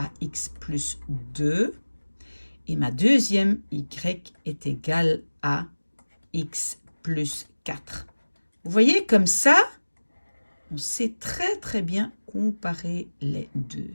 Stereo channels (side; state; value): both; inverted; correlation -1.00